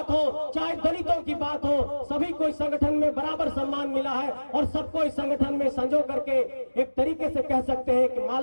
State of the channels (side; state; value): both; inverted; correlation -1.00